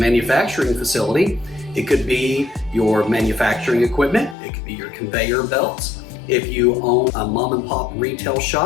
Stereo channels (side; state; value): right; drops out; at 4.4 s